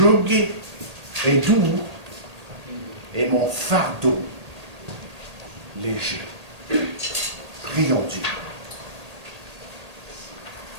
est doux et mon fardeau léger. » Prions Dieu.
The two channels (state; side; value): late; left; 1.8 ms